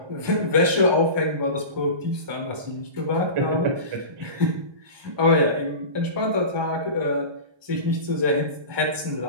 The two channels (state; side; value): late; left; 1.2 ms